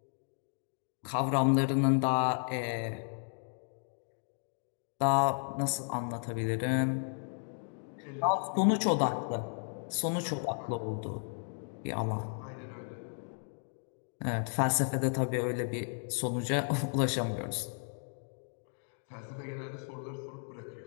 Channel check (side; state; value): right; silent; 55 dB below the other